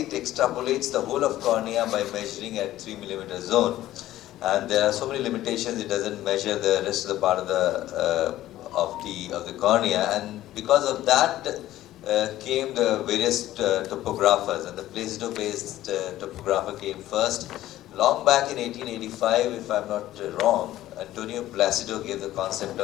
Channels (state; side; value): quieter; right; 14.4 dB